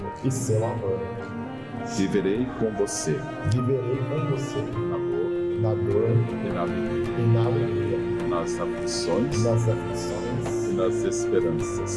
seu amor. Viverei com você Viverei com você na dor na dor e na alegria, e na alegria, nas aflições nas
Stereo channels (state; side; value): identical; both; correlation 1.00